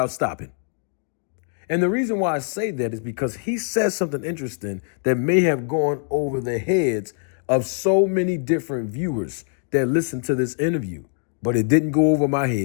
stopping. And the reason why I say that is because he says something interesting that may have gone over the heads of so many different viewers that listened to this interview, but it didn't go over my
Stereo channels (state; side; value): silent; right; 57 dB below the other